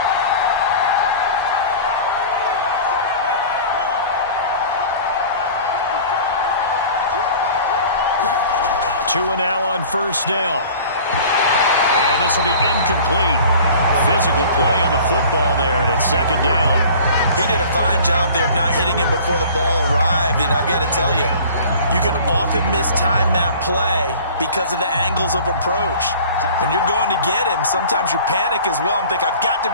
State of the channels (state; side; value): inverted; both; correlation -0.44